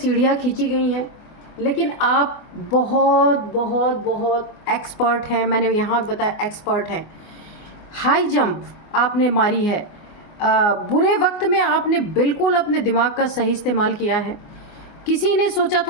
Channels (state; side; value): late; right; 24 ms